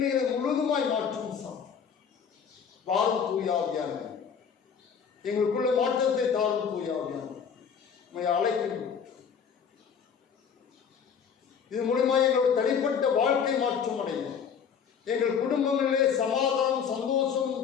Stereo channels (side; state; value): right; quieter; 7.0 dB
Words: முழுதுமாய் மாற்றும் வாரும் தூயாவியான எங்களுக்குள்ள மாற்றத்தை தாரும் தூயாவியான அழைக்கின்றோம். இது மூலமாக எங்களுடைய தனிப்பட்ட வாழ்க்கை மாற்றம் அடையும். எங்கள் குடும்பங்களிலே சமாதானம், சந்தோஷம்,